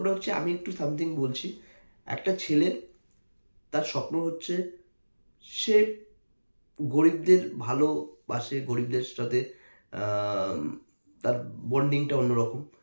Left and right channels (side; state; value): both; inverted; correlation -1.00